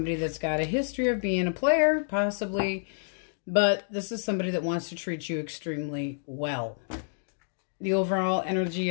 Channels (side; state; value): right; silent; digital silence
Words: that's got a history of being a player, possibly, but this is somebody that wants to treat you extremely well. The overall energy